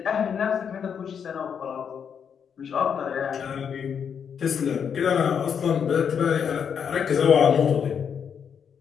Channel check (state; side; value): quieter; right; 7.4 dB